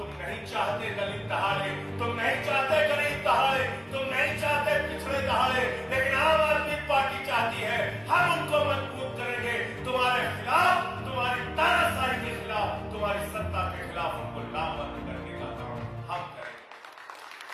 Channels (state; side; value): identical; both; correlation 1.00